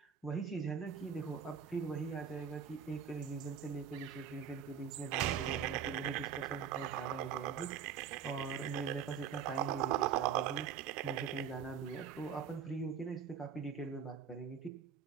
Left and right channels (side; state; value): left; quieter; 7.4 dB